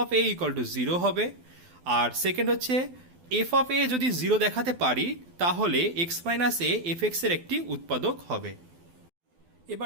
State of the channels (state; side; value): late; left; 12 ms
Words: of A equal to 0 হবে। আর সেকেন্ড হচ্ছে এফ অফ এ যদি 0 দেখাতে পারি তাহলে এক্স মাইনাস এ এফএক্স এর একটি উৎপাদক হবে।